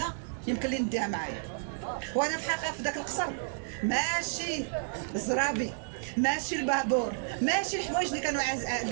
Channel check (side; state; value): left; silent; digital silence